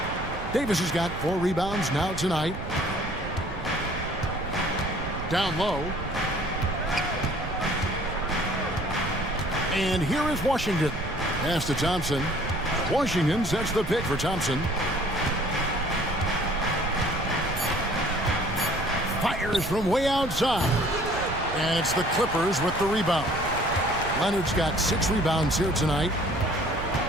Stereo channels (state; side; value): noise; right; rumble, 9 dB below the sound